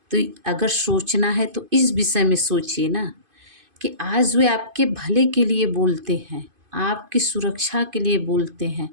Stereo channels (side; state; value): left; late; 2.5 ms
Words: तो अगर सोचना है तो इस विषय में सोचिए ना, कि आज वे आपके भले के लिए बोलते हैं, आपकी सुरक्षा के लिए बोलते हैं,